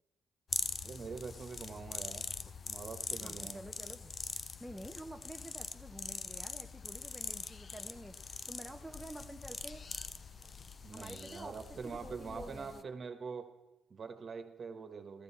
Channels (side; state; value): both; normal; correlation 0.85